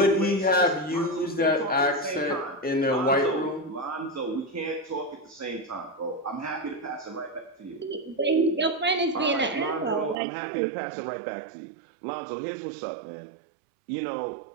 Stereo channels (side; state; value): left; drops out; at 10.2 s